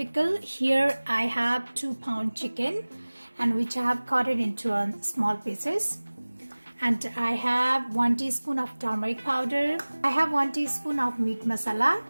here I have 2-pound chicken and which I have cut it into small pieces. And I have 1 teaspoon of turmeric powder. I have 1 teaspoon of meat masala.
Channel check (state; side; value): inverted; both; correlation -1.00